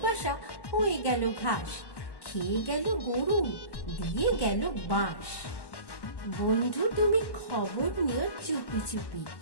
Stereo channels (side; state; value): right; late; 1.1 ms